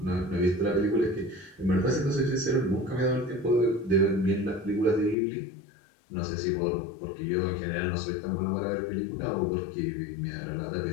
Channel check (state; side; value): drops out; right; at 5.2 s